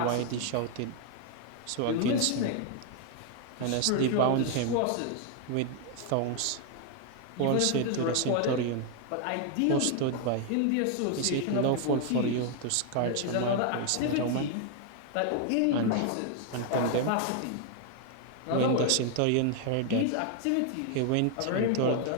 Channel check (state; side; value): different; both; correlation 0.00